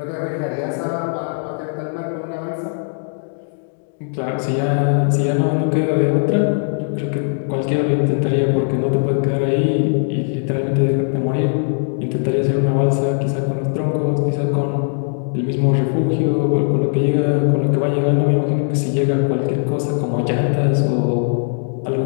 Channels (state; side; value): silent; right; 66 dB below the other